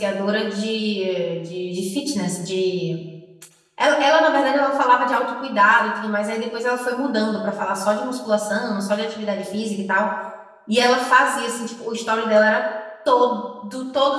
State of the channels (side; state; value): both; identical; correlation 1.00